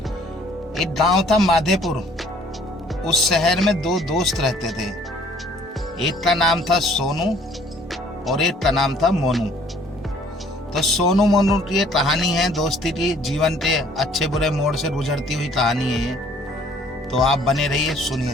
एक गांव था माधेपुर। उस शहर में दो दोस्त रहते थे। एक का नाम था सोनू और एक का नाम था मोनू। तो सोनू मोनू की ये कहानी है दोस्ती की, जीवन के अच्छे बुरे मोड़ से गुजरती हुई कहानी है ये। तो आप बने रहिए, सुनिए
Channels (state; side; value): normal; both; correlation 0.58